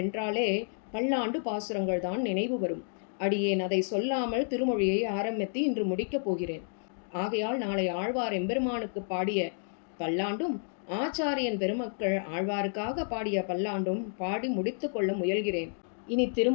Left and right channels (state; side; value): silent; right; digital silence